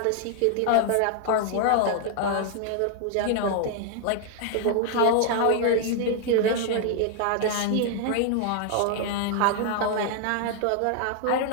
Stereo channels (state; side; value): different; both; correlation -0.01